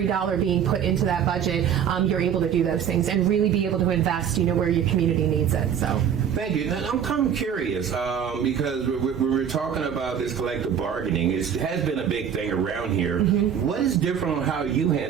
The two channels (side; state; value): left; quieter; 8.4 dB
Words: dollar being put into that budget, you're able to do those things and really be able to invest where your community needs it. So thank you. Now, I'm kind of curious because we're talking about this collective bargaining. It has been a big thing around here. What is different on how you